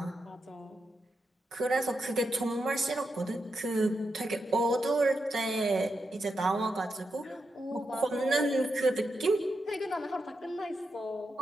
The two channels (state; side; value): normal; both; correlation 0.86